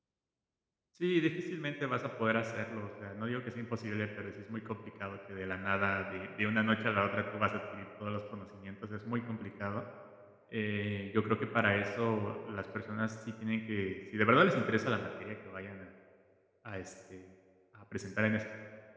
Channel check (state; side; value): identical; both; correlation 1.00